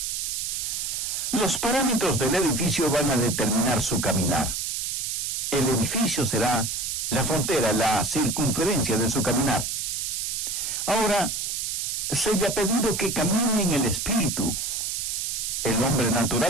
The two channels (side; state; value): right; noise; hiss, 2 dB below the sound